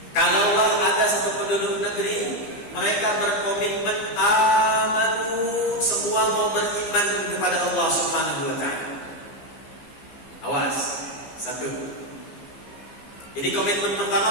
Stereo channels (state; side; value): late; right; 15 ms